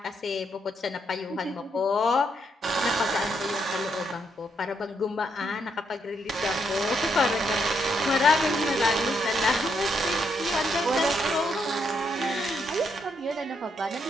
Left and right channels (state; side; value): normal; both; correlation 0.77